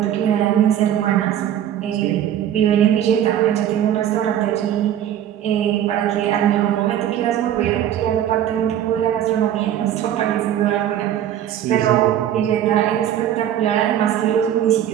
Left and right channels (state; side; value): quieter; left; 10.9 dB